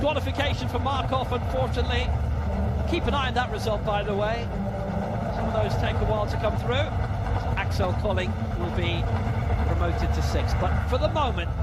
for Markov, unfortunately. Keep an eye on that result, by the way. Some of those take a while to come through. Axel Colling will be promoted to 6th, but for the moment,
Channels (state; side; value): identical; both; correlation 1.00